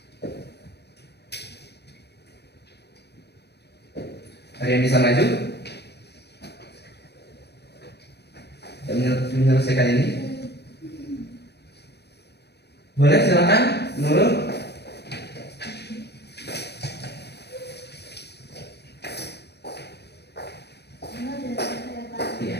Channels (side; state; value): right; late; 0.48 ms